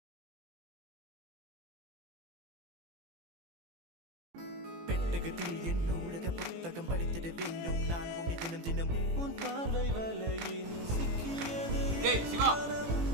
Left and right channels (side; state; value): left; late; 18 ms